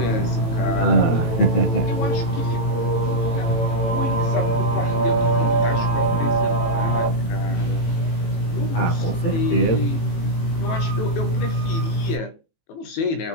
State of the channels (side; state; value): right; late; 18 ms